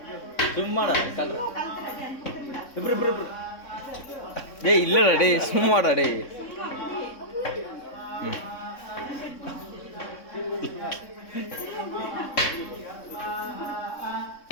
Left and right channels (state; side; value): late; right; 3.6 ms